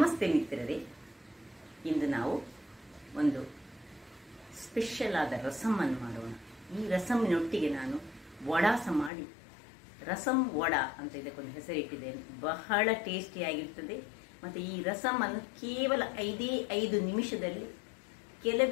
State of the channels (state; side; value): drops out; right; at 9.1 s